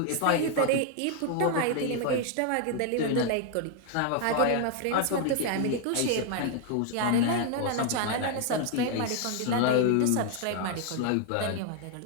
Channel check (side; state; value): both; different; correlation 0.00